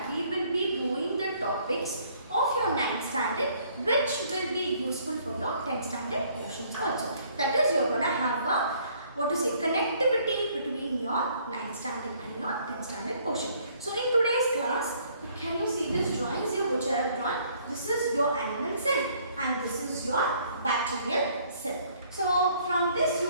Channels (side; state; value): both; inverted; correlation -0.62